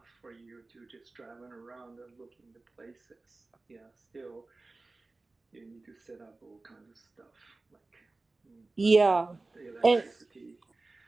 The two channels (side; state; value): left; quieter; 3.3 dB